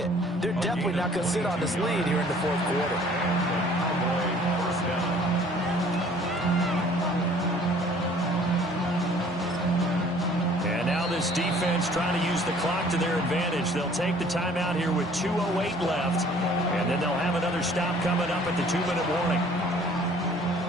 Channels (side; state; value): both; normal; correlation 0.55